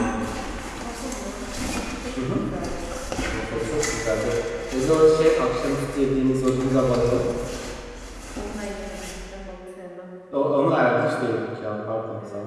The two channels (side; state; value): both; identical; correlation 1.00